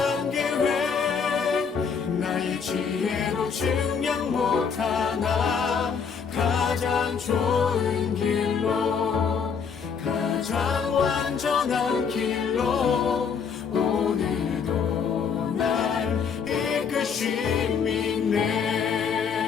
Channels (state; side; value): quieter; right; 6.3 dB